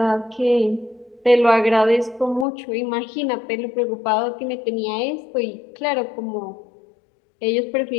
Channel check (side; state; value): right; drops out; at 2.5 s